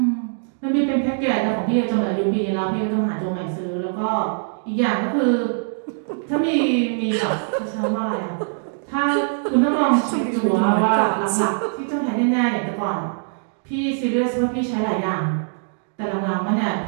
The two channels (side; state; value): left; silent; digital silence